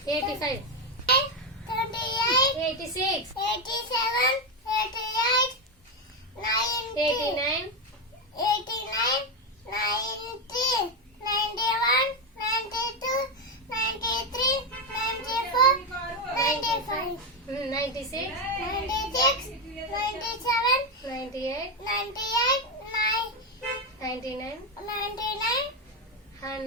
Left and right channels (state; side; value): normal; both; correlation 0.08